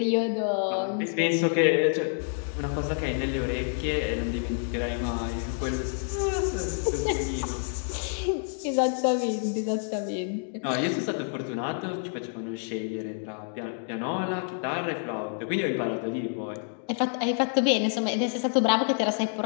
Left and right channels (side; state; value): right; silent; digital silence